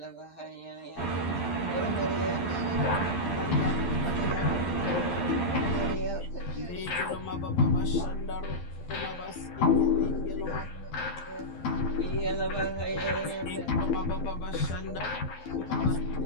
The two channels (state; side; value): late; right; 12 ms